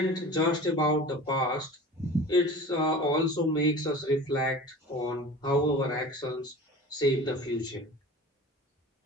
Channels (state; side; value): normal; both; correlation 0.38